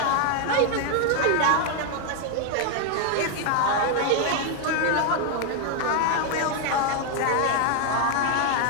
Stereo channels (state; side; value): different; both; correlation 0.01